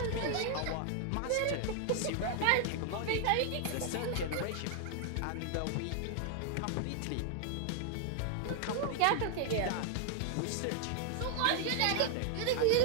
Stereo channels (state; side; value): different; both; correlation 0.00